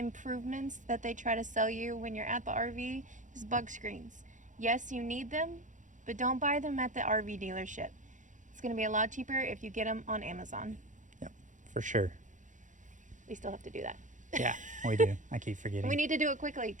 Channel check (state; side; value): late; left; 0.36 ms